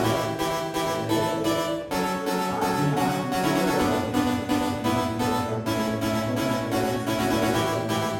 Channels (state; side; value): identical; both; correlation 1.00